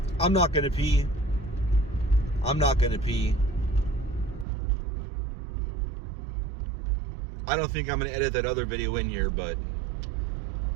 I'm not gonna pee. I'm not gonna pee. I don't think I'm gonna edit that other video in here, but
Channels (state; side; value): drops out; left; at 4.5 s